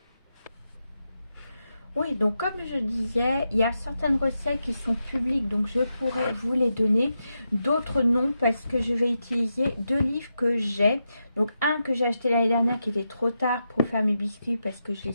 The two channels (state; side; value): inverted; both; correlation -0.86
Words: Oui, donc comme je disais, il y a certaines recettes qui sont publiques, donc je pourrais vous les donner. D'autres non, parce que je vais utiliser deux livres que j'ai. Donc un que j'ai acheté l'année dernière qui était trop tard pour faire mes biscuits, parce que je